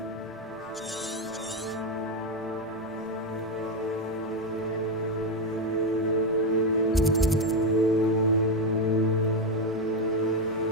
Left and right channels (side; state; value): both; normal; correlation 0.09